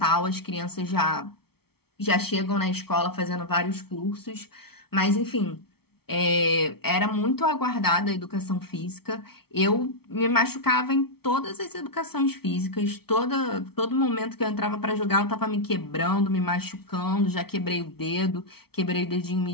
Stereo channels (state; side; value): late; right; 0.95 ms